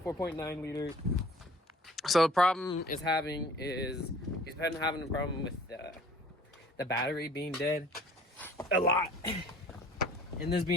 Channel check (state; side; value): normal; both; correlation 0.51